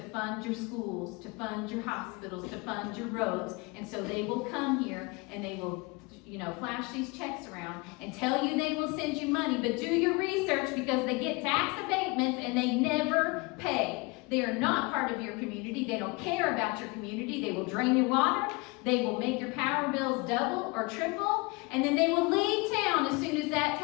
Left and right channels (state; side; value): quieter; right; 27.1 dB